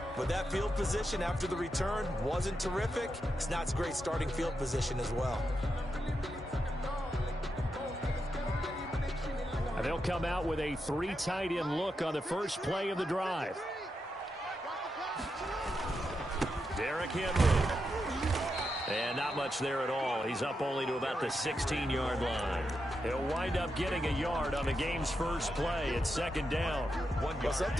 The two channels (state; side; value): normal; both; correlation 0.85